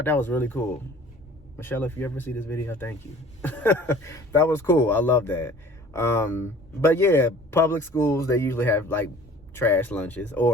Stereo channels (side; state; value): both; normal; correlation 0.48